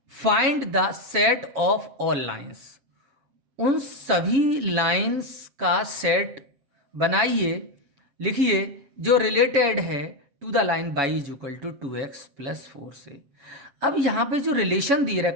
find the set of all lines. उन सभी लाइंस का सेट बनाइए, लिखिए जो रिलेटेड है to the line y is equal to 2x plus 4 से. अब यहाँ पे जो रिलेशन दे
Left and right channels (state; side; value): late; left; 7.6 ms